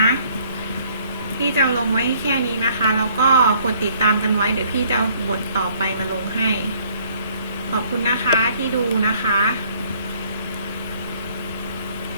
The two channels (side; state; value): both; inverted; correlation -0.62